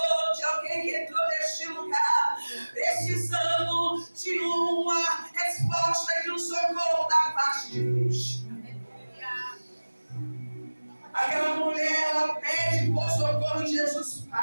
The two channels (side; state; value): both; inverted; correlation -1.00